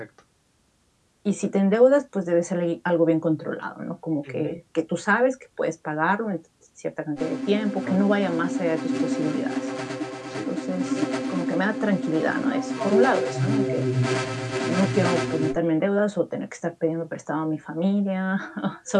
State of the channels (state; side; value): identical; both; correlation 1.00